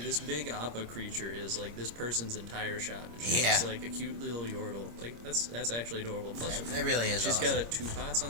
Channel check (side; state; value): left; late; 26 ms